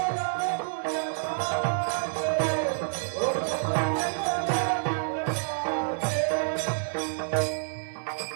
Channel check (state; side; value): silent; left; 59 dB below the other